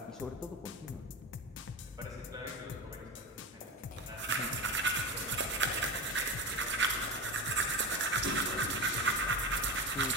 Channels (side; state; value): both; normal; correlation 0.23